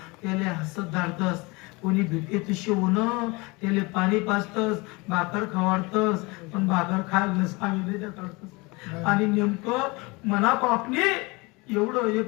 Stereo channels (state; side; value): quieter; right; 25.6 dB